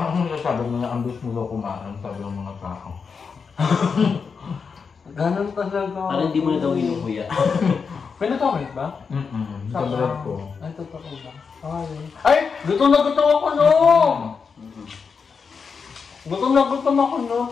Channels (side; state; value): right; quieter; 5.6 dB